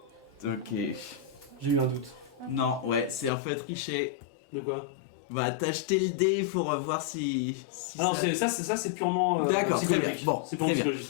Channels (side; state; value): right; drops out; at 3.3 s